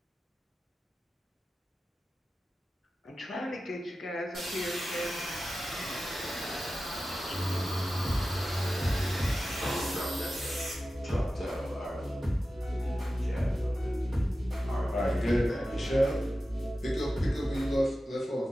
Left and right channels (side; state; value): both; normal; correlation 0.94